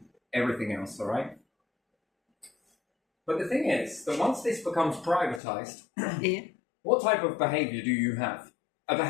everything else, all right? But the thing is that once this becomes privatised, Yeah. what type of behaviour do you have? A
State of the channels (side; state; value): right; drops out; at 5.4 s